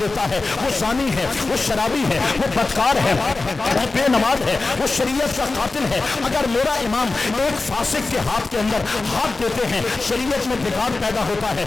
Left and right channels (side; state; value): right; quieter; 3.5 dB